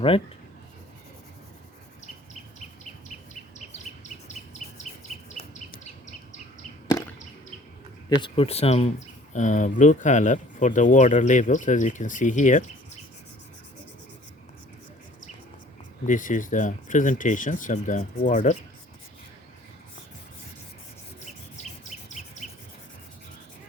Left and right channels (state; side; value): normal; both; correlation 0.52